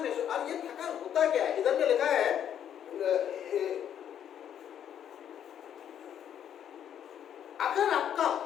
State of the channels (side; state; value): right; quieter; 9.6 dB